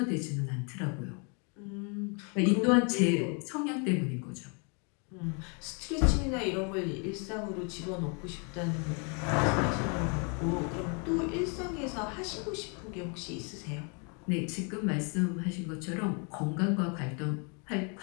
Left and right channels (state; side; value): quieter; right; 36.2 dB